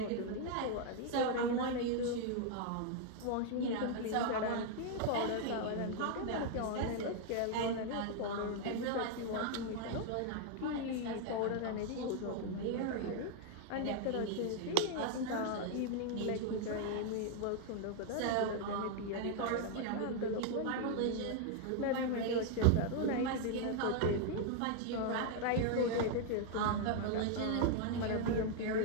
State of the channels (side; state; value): both; different; correlation 0.00